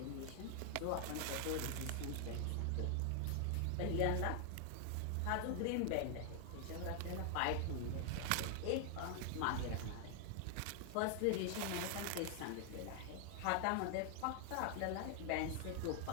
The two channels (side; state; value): both; different; correlation 0.00